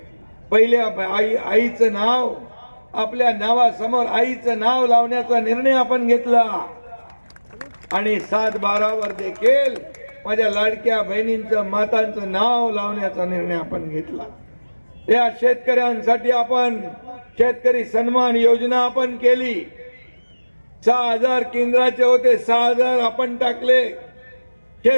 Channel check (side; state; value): both; inverted; correlation -1.00